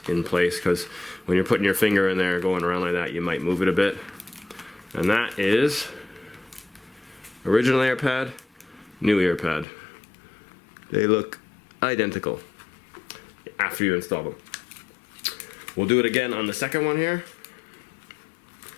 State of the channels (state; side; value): drops out; right; at 9.7 s